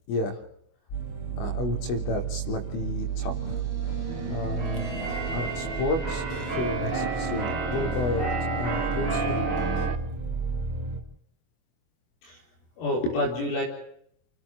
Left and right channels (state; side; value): late; right; 25 ms